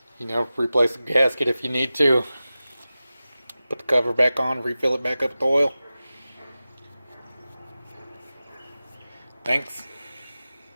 you know, replace the gasket if you need to. Put the cover back on, refill it back up with oil. Thanks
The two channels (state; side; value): inverted; both; correlation -0.95